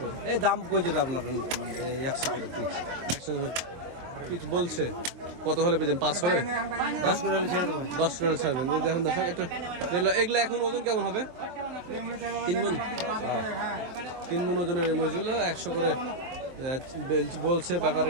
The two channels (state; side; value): late; left; 23 ms